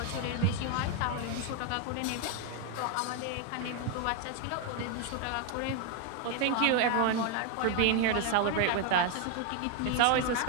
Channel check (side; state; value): both; different; correlation 0.01